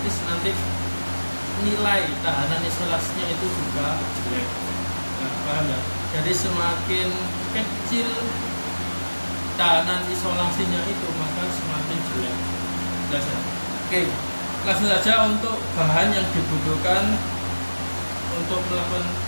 nanti nilai tahanan isolasinya itu juga jelek. Nah, paham ya? Jadi semakin kecil tahanan isolasinya itu, maka semakin jelek. Jelas ya? Oke, langsung saja untuk bahan yang dibutuhkan untuk melakukan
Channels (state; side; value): inverted; both; correlation -1.00